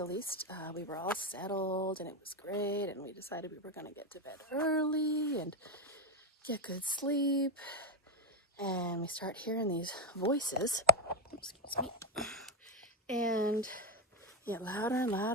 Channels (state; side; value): normal; both; correlation 0.07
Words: least. We were all settled and it was great, and we decided we were going to get to bed early and get good sleep. And we start hearing these voices, excuse me, and get louder and